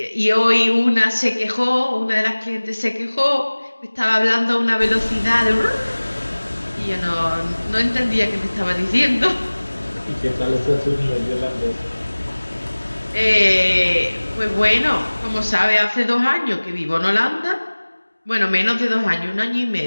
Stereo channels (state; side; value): inverted; both; correlation -1.00